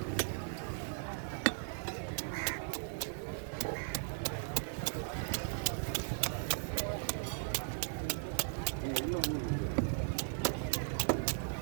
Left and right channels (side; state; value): left; silent; 53 dB below the other